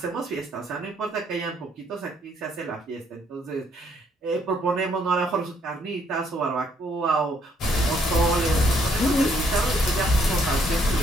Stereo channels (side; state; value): both; normal; correlation 0.69